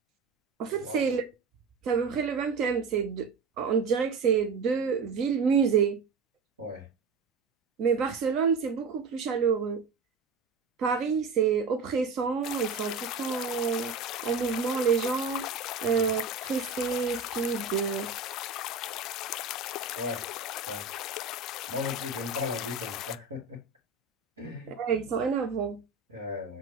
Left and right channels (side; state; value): left; quieter; 4.2 dB